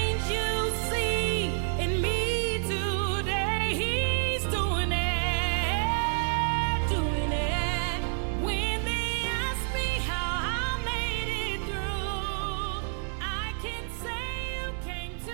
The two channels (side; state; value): left; silent; 59 dB below the other